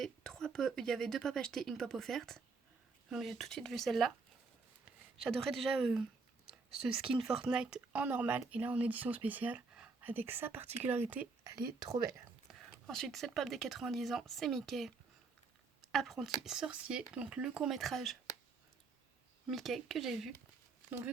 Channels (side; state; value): left; quieter; 4.4 dB